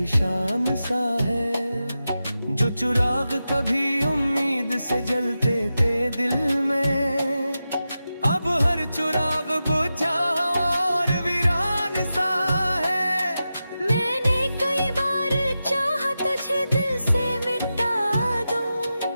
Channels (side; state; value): both; inverted; correlation -0.92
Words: सा है। जो चिराग कभी उम्मीद से जलते थे दिल में, अब हर चिराग बुझा और वीरान सा है। मैंने कई बार चाहा तुझे दिल से मिटा दूं,